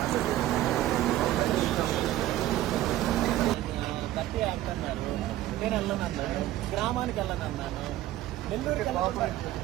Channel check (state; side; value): quieter; left; 14.5 dB